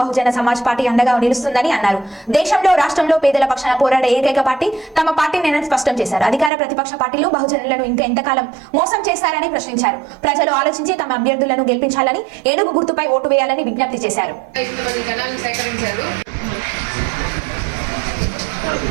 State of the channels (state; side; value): drops out; left; at 6.5 s